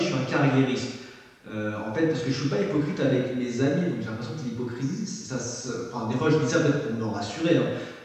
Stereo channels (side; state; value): both; identical; correlation 1.00